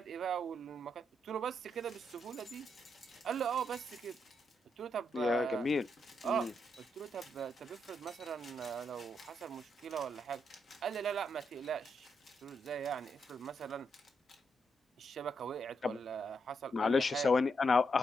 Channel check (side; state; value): both; normal; correlation 0.80